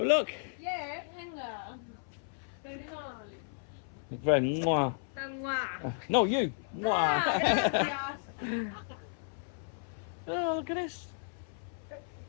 look. Yes, venga. Perdón. Very mwah. Tan guau. No, you. Mwah. Gracias. Oh, look at this.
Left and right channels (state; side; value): silent; right; 55 dB below the other